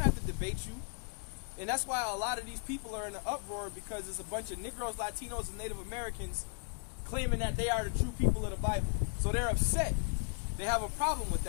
have to debate you. And that's why a lot of these people are in an uproar, because there's a bunch of Negroes, Latinos, and Native Americans claiming that they are the true people of the Bible. So they're upset. They have a problem with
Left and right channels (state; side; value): quieter; right; 38.1 dB